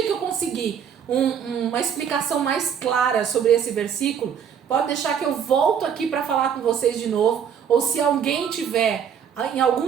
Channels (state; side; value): quieter; left; 7.9 dB